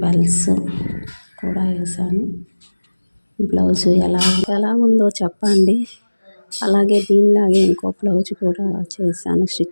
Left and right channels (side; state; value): both; inverted; correlation -1.00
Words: బెల్స్ కూడా వేసాను. బ్లౌజు ఎలా ఉందో చెప్పండి. అలాగే దీనిలాగే ఇంకో బ్లౌజ్ కూడా చేశాను,